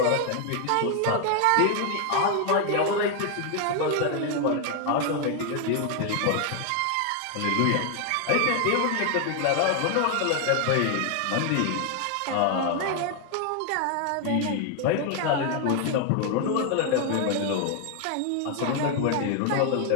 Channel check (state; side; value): different; both; correlation 0.00